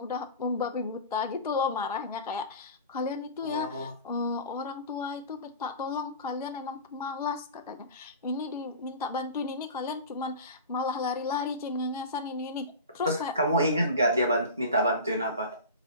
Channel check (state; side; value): inverted; both; correlation -0.31